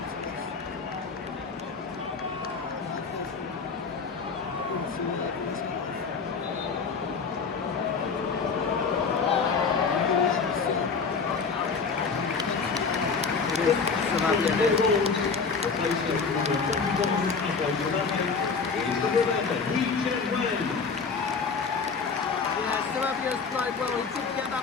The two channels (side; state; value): right; quieter; 5.1 dB